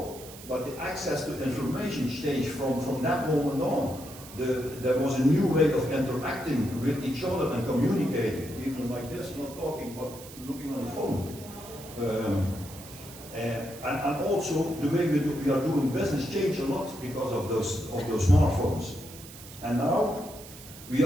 but the access to information changed from that moment on. There was a new way of interacting with each other and communicating, even like this, not talking, but looking on the phone. And also the way we are doing business changed a lot because of those smartphones. And now we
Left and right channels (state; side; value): noise; right; hiss, 16 dB below the sound